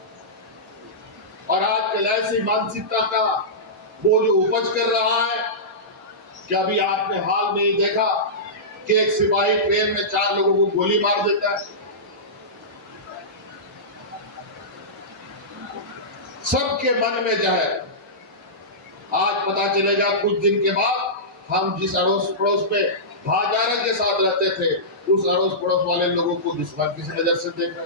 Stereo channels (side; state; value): both; normal; correlation -0.17